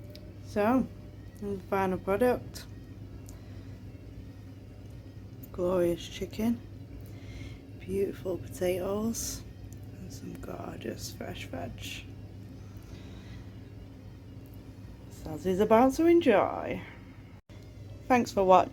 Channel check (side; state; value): both; identical; correlation 1.00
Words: So, the final product. Glorious chicken, beautiful potatoes, and some gorgeous fresh veg. Sazzy's about to enjoy. Thanks for